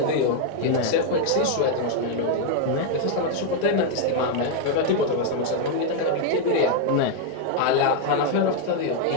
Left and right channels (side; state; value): both; different; correlation 0.00